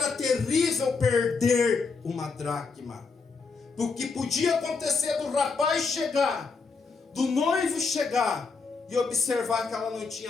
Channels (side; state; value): right; quieter; 4.7 dB